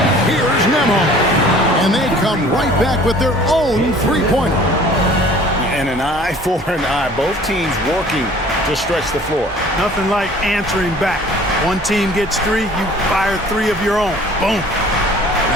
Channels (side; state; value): both; normal; correlation 0.50